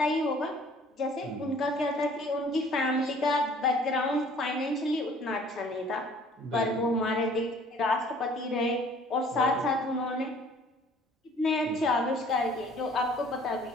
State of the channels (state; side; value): normal; both; correlation 0.54